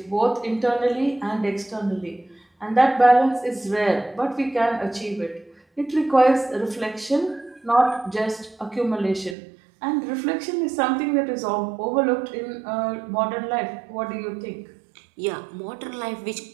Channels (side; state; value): left; drops out; at 9.3 s